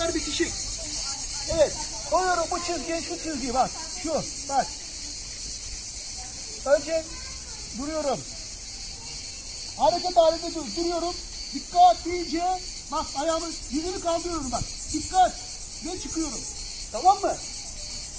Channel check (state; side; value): identical; both; correlation 1.00